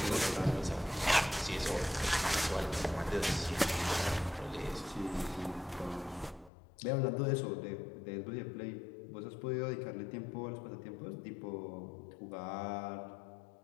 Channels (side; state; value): right; drops out; at 6.5 s